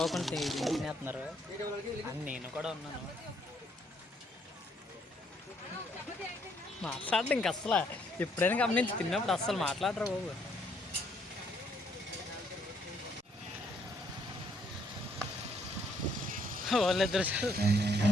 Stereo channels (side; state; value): both; normal; correlation 0.69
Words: తినేస్తున్నారు అని నేను కూడా ఉన్నాను. మాట్లాడటం ఇంక అసలు ఎప్పుడైనా గమనించి తిన్నప్పుడు అస్సలు మాట్లాడరు బాబు. వాళ్ళిద్దరు